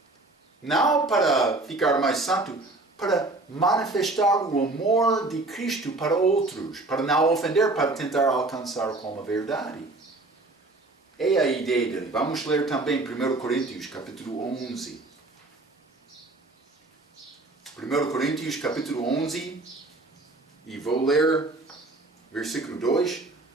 não para ficar mais santo, para manifestar o amor de Cristo para outros, para não ofender, para tentar alcançar como a verdade. É a ideia dele. Vamos ler também 1 Coríntios, capítulo 11. 1 Coríntios, capítulo 11, e vou ler versículo 2.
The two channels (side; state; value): left; quieter; 3.0 dB